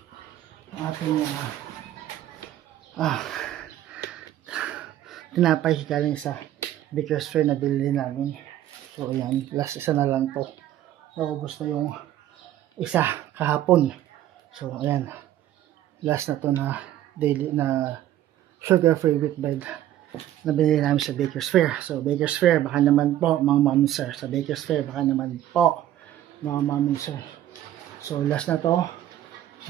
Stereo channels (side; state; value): left; quieter; 12.6 dB